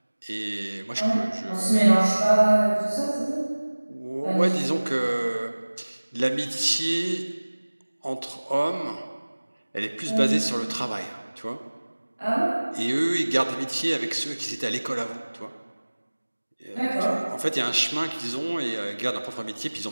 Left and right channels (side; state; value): both; inverted; correlation -1.00